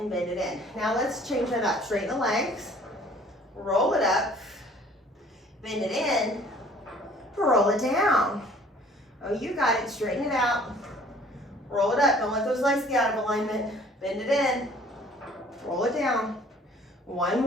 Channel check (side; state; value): both; normal; correlation 0.54